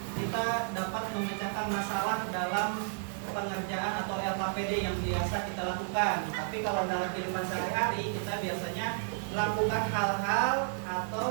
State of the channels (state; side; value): silent; left; digital silence